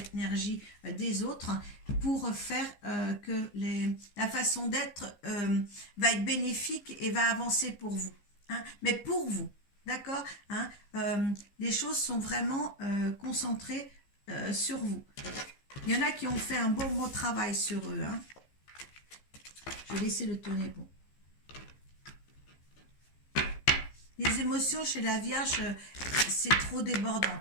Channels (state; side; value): late; right; 15 ms